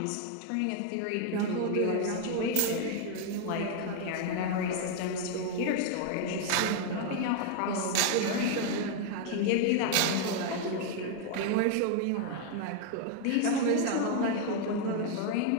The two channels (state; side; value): different; both; correlation 0.00